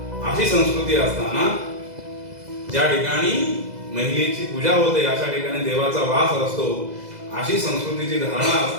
अशी संस्कृती असताना ज्या ठिकाणी महिलेची पूजा होते अशा ठिकाणी देवाचा वास असतो अशी संस्कृतीची धारणा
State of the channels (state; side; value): late; left; 2.0 ms